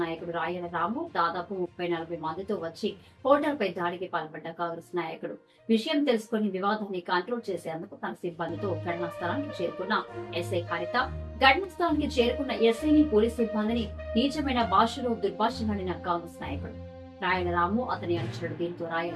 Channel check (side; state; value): both; identical; correlation 1.00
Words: నాయకుడు రాయల రాము దాదాపు 30-40 మందితో వచ్చి హోటల్పై దాడికి పాల్పడ్డ కాంగ్రెస్ నాయకుడు విషయం తెలుసుకుని వివాదాన్ని కంట్రోల్ చేసేందుకు తన సిబ్బందితో ఘటనా స్థలానికి చేరుకున్న ఎస్ఐ హరిత ఘటనా స్థలానికి చేరుకున్న ఎస్ఐని పోలీసు సిబ్బందిని నీచమైన భాషలో దుర్భాషలాడిన కాంగ్రెస్ నాయకుడు రాయల రాము అతని అనుచరుడు. దీంతో